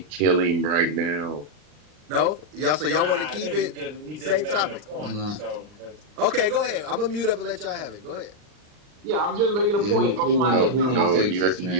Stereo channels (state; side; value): late; left; 39 ms